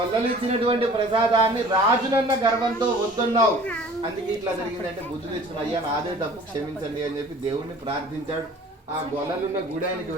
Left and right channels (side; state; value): both; normal; correlation 0.48